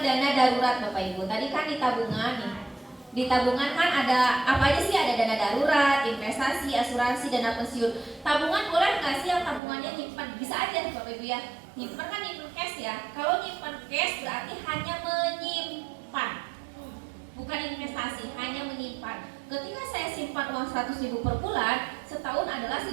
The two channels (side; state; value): left; drops out; at 9.6 s